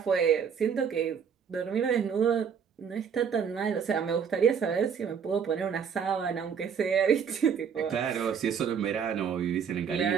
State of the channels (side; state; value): left; quieter; 7.1 dB